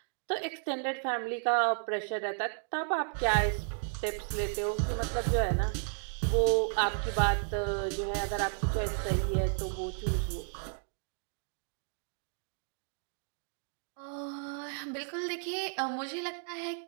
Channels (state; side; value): silent; left; 56 dB below the other